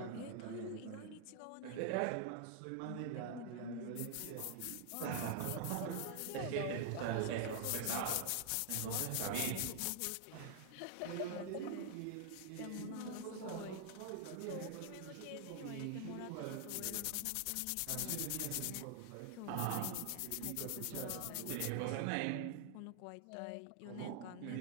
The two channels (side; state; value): both; different; correlation 0.00